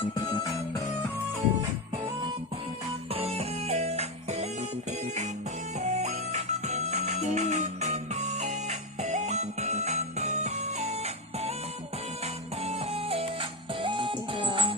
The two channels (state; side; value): normal; both; correlation 0.11